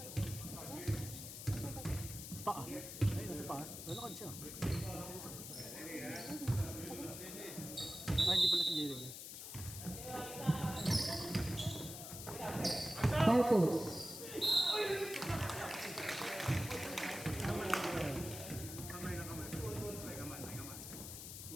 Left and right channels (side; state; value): left; noise; hiss, 9 dB below the sound